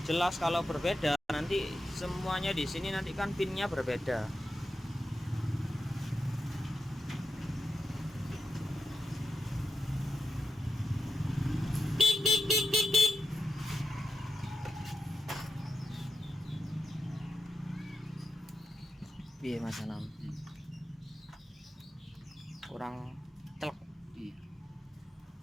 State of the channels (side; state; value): both; normal; correlation 0.88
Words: Jelas kalau berbeda nanti semuanya di sini nanti kan pinnya berbeda. Piye Mas Anam? Kurang telek. Iya.